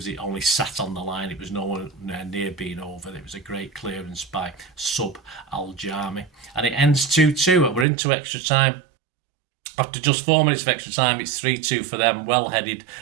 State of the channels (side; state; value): left; drops out; at 7.9 s